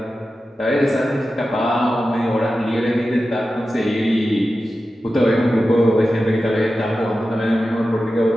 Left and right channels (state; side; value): normal; both; correlation 0.93